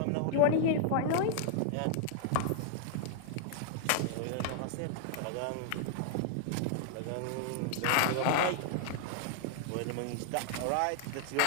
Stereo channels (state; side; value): different; both; correlation 0.00